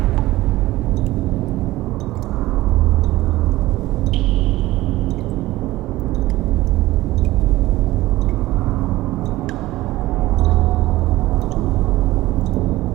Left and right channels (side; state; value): left; quieter; 17.4 dB